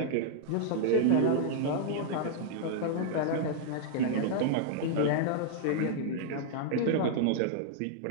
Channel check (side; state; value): both; different; correlation -0.01